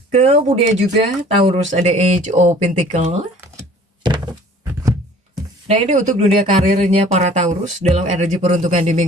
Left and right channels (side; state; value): both; normal; correlation 0.50